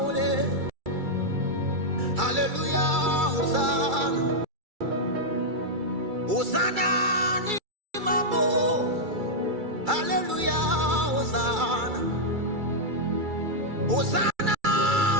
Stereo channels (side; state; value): left; late; 2.3 ms